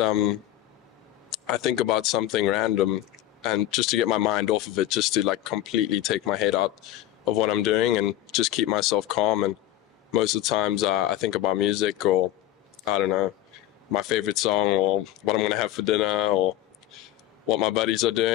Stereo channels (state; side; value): quieter; right; 13.5 dB